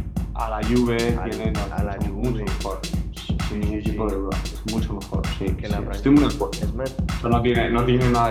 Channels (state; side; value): identical; both; correlation 1.00